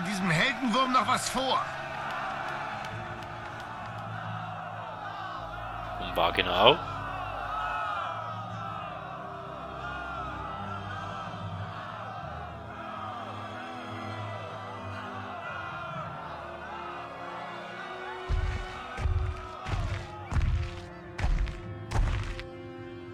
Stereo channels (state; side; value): identical; both; correlation 1.00